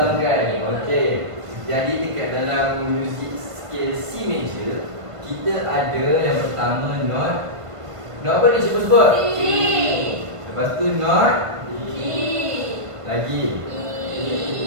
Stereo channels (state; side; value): late; left; 1.5 ms